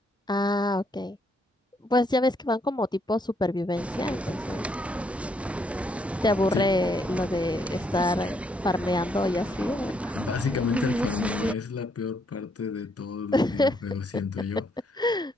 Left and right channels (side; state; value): both; normal; correlation 0.72